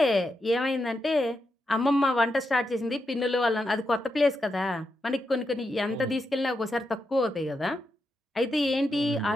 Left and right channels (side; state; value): both; normal; correlation 0.85